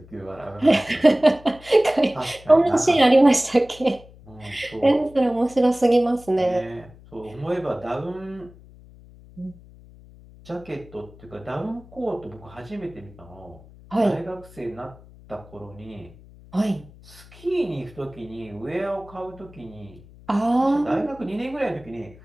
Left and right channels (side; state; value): left; noise; hum, 22 dB below the sound